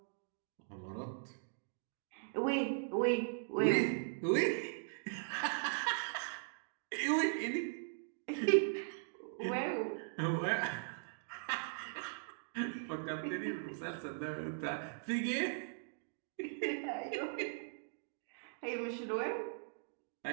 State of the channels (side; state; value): left; silent; digital silence